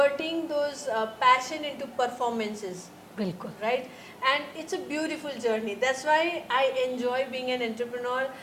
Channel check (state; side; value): identical; both; correlation 1.00